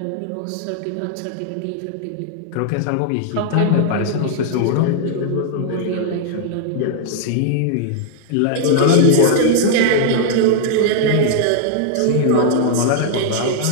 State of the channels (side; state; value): both; different; correlation 0.00